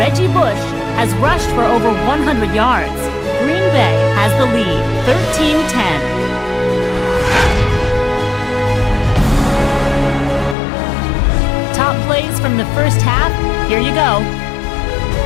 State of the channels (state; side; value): drops out; right; at 10.6 s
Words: Bush has rushed for over 100 yards. Green Bay has the lead, 13-10. Top plays from the first half, here you go.